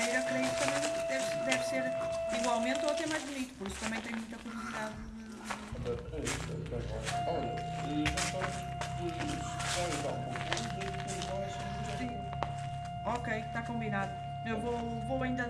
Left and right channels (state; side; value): identical; both; correlation 1.00